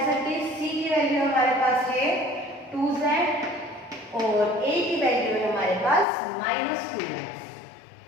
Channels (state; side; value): drops out; right; at 6.1 s